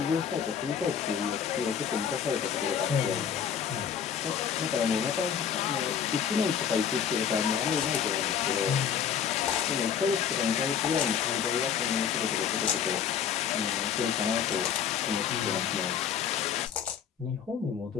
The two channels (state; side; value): quieter; right; 8.0 dB